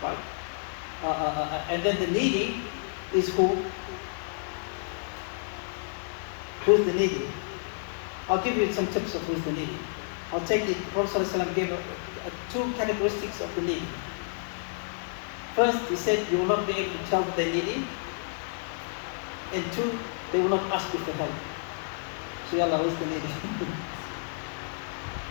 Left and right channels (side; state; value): right; silent; 58 dB below the other